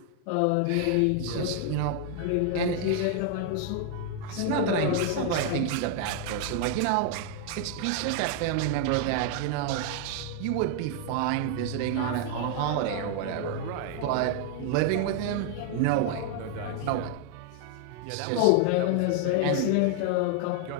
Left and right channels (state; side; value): different; both; correlation 0.00